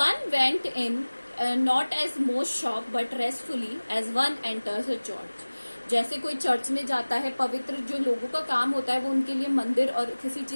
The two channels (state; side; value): inverted; both; correlation -1.00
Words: went in not as most shop but restfully as one enters a church. जैसे कोई चर्च में जाता है, पवित्र जो लोगों का काम होता है वो उनके लिए मंदिर और किसी